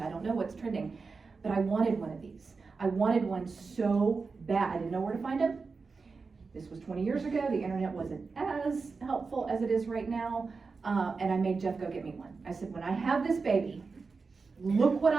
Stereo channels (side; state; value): left; quieter; 4.5 dB